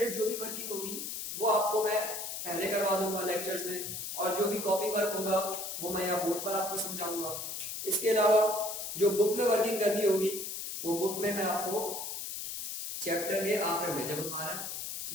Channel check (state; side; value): noise; left; hiss, 5 dB below the sound